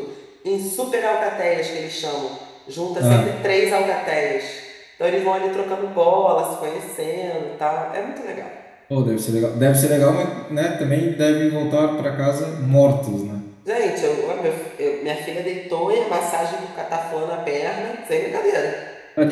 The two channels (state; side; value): identical; both; correlation 1.00